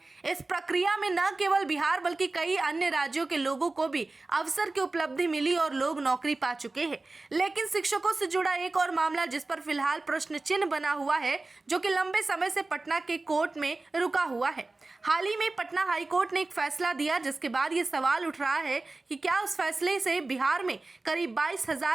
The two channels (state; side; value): quieter; left; 3.3 dB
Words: इस प्रक्रिया में न केवल बिहार बल्कि कई अन्य राज्यों के लोगों को भी अवसर की उपलब्धि मिली और लोग नौकरी पा चुके हैं। लेकिन शिक्षकों से जुड़ा एक और मामला जिस पर फिलहाल प्रश्न चिन्ह बना हुआ है, जो कि लंबे समय से पटना के कोर्ट में रुका हुआ है। हाल ही में पटना हाईकोर्ट ने एक फैसला दिया, जिसके बाद ये सवाल उठ रहा है कि क्या उस फैसले से बिहार में करीब